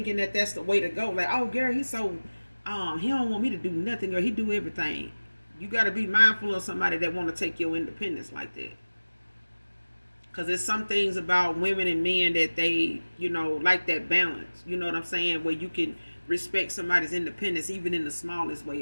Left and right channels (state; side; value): inverted; both; correlation -1.00